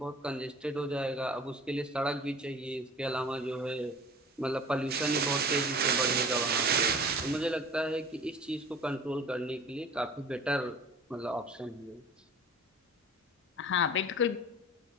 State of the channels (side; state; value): both; normal; correlation 0.42